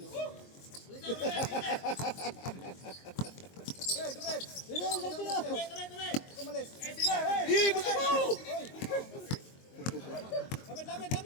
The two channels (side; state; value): right; late; 22 ms